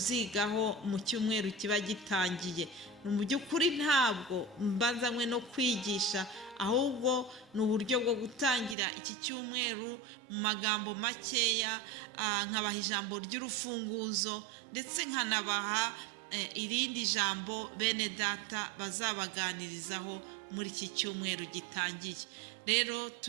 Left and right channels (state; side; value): drops out; left; at 8.8 s